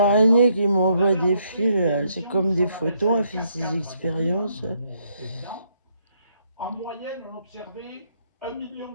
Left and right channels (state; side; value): inverted; both; correlation -0.73